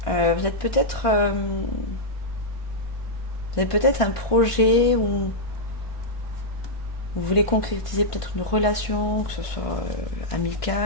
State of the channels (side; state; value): right; late; 1.5 ms